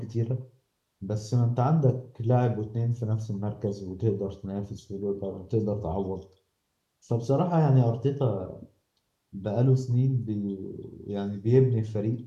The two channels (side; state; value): both; identical; correlation 1.00